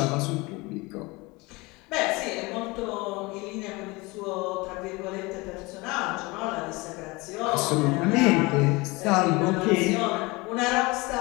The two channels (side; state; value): right; quieter; 24.1 dB